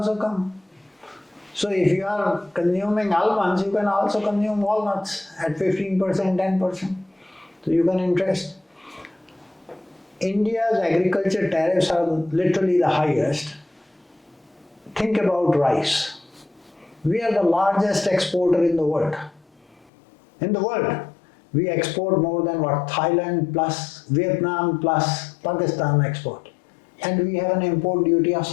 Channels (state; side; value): drops out; right; at 19.9 s